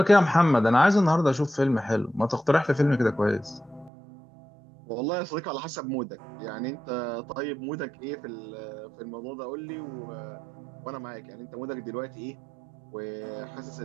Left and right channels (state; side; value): drops out; left; at 3.9 s